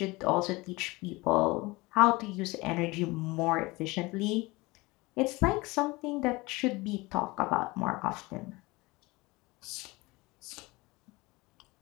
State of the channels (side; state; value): right; quieter; 22.9 dB